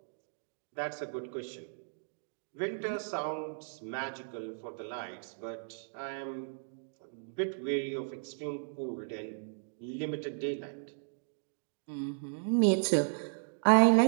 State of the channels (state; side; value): silent; left; digital silence